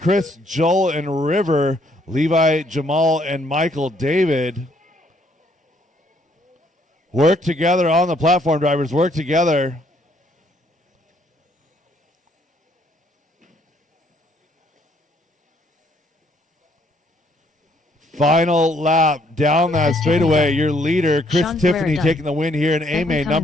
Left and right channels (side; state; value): both; normal; correlation 0.67